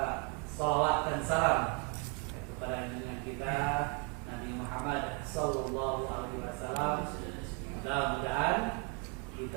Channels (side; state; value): left; quieter; 30.7 dB